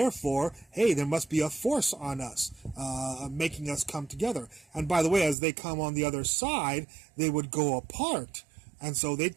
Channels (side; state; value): left; drops out; at 5.4 s